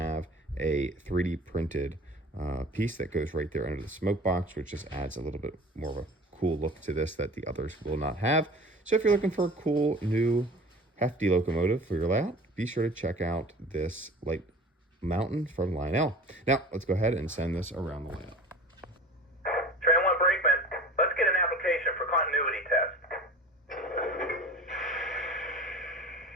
a 3D printed piece that goes right there under the smoke box, which just adds a little bit more of a cool look to this that the others will not have. So if you're looking for a cool, new, hefty locomotive for your layout, be sure to check out this Light Mountain from Lionel. Now, let's go ahead and send this around the layout. For continuity test.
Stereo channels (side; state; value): both; normal; correlation 0.40